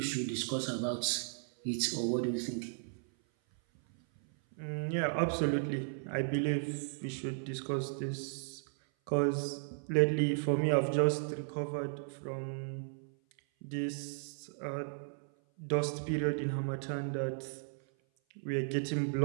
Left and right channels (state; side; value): silent; left; 54 dB below the other